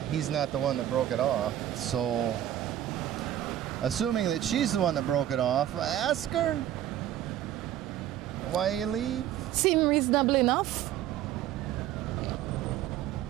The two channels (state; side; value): quieter; left; 12.0 dB